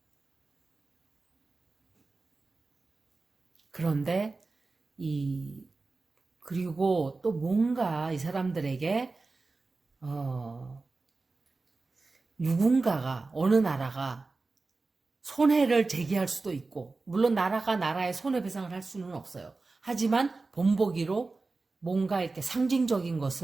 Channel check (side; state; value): left; quieter; 3.7 dB